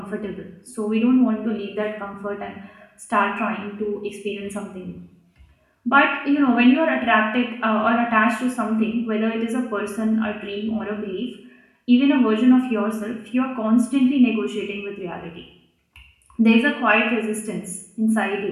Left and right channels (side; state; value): both; identical; correlation 1.00